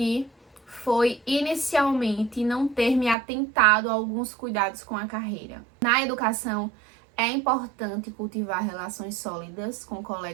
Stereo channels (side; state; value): left; drops out; at 3.2 s